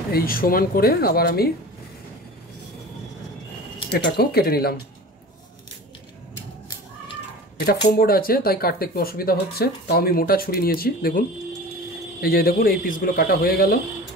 এই সমান করে আবার আমি এটাকেও কেটে নিলাম। এটা ফোম বোর্ড আছে তাই কাটতে একটু অসুবিধা হচ্ছে, তাও আমি মোটা ছুরি নিয়েছি। দেখুন এই যে দেখুন এই পিসগুলো কাটা হয়ে গেল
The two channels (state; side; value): normal; both; correlation 0.37